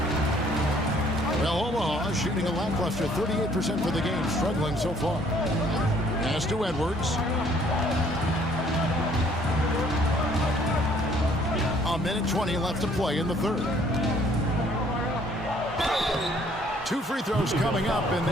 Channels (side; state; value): both; normal; correlation 0.61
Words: Well, Omaha shooting a lackluster 38% for the game, struggling so far. Pass to Edwards. A minute 20 left to play in the third. 2 free throws coming up, and